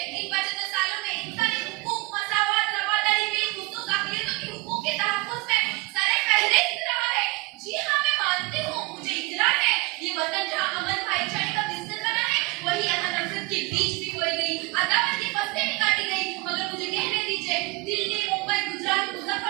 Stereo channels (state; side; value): quieter; left; 24.1 dB